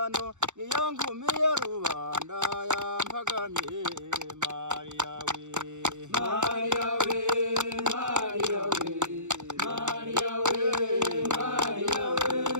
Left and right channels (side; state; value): left; late; 0.84 ms